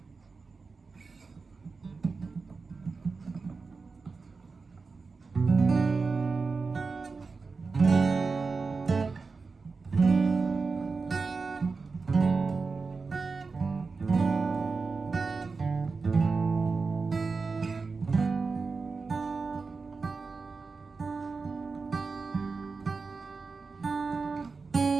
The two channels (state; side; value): quieter; left; 4.4 dB